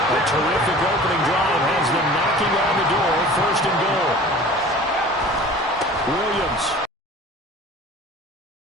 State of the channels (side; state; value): both; normal; correlation 0.43